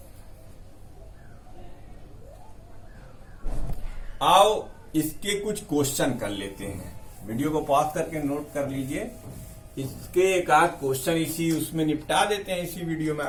आओ इसके कुछ क्वेश्चन कर लेते हैं। वीडियो को पॉज करके नोट कर लीजिए। इसके एक आध क्वेश्चन इसी उसमें निपटा देते हैं इसी वीडियो में।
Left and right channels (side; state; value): both; identical; correlation 1.00